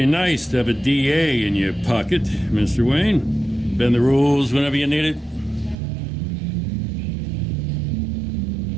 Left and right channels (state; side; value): drops out; left; at 5.8 s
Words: nice to have a DA in your pocket, Mr. Wayne. Bend the rules whenever you need it.